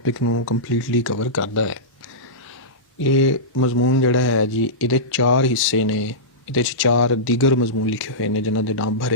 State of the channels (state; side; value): normal; both; correlation -0.16